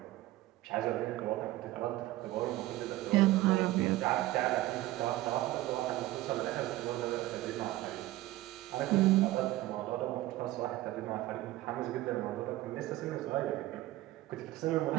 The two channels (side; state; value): left; quieter; 16.4 dB